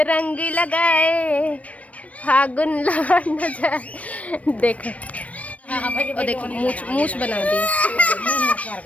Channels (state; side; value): late; right; 0.066 ms